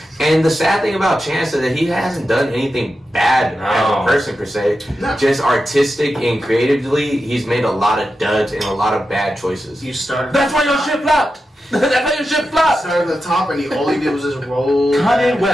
And the sad thing about Chance is that he hasn't done anything bad as a person per se. No. Just artistic and creatively, he's made a lot of duds and a lot of bad choices. You started. That's why your shit flopped. That's why your shit flopped. Started at the top, and all he did was just roll. Kanye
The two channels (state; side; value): normal; both; correlation 0.90